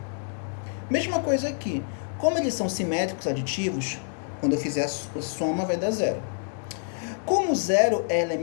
Mesma coisa aqui, como eles são simétricos aditivos, quando eu fizer a soma vai dar zero. Como zero é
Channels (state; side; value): silent; right; digital silence